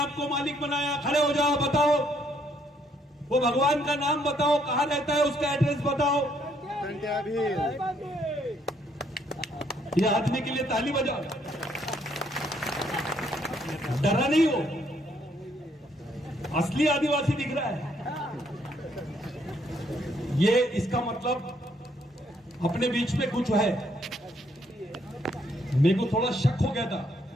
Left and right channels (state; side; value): normal; both; correlation 0.70